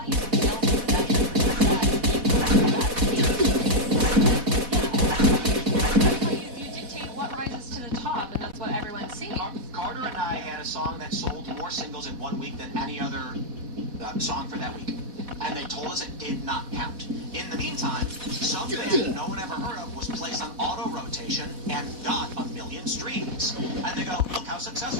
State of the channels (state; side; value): late; left; 4.1 ms